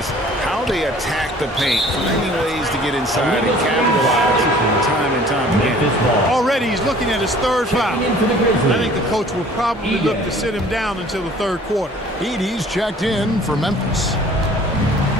how they attack the paint, finding ways to get inside and capitalize time and time again. Already he's looking at his 3rd foul. I think the coach will probably look to sit him down until the 3rd quarter. Edey's checked in for Memphis.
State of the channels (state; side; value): normal; both; correlation 0.51